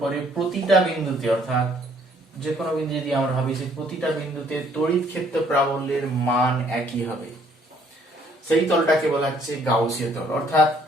প্রতিটা বিন্দুতে, অর্থাৎ যে কোনো বিন্দু যদি আমরা ভাবি, সেই প্রতিটা বিন্দুতে তড়িৎ ক্ষেত্র প্রাবল্যের মান একই হবে। সেই তলটাকে বলা হচ্ছে গাউসীয় তল। অর্থাৎ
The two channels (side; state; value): both; normal; correlation 0.63